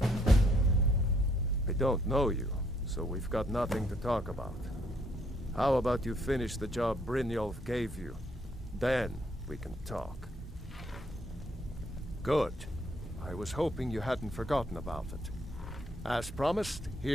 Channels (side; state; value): both; normal; correlation 0.69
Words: I don't know you, so we've got nothing to talk about. How about you finish the job Brynjolf gave you? Then we can talk. Good. I was hoping you hadn't forgotten about it. As promised,